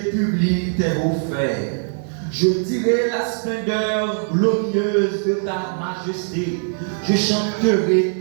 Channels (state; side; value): silent; left; digital silence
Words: tes hauts faits. Je dirai la splendeur glorieuse de ta majesté. Je chanterai